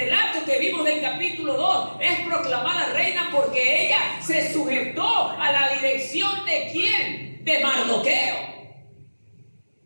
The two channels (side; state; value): both; inverted; correlation -1.00